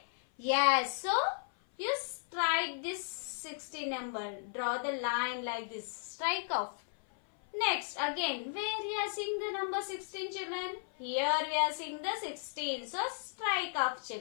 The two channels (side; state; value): right; silent; 54 dB below the other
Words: Yes. So you strike this 16 number. Draw the line like this. Strike off. Next, again, where we are seeing the number 16 children? Here we are seeing the 16. So, strike off